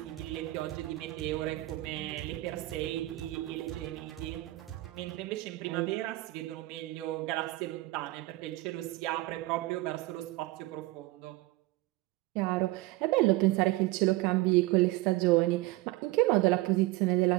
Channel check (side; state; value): left; quieter; 19.3 dB